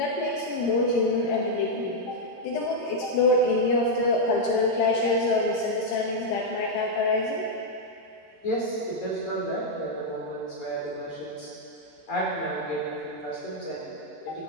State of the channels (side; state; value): both; normal; correlation -0.02